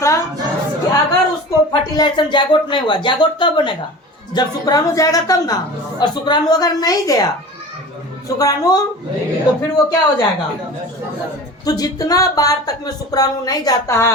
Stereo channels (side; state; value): both; normal; correlation 0.36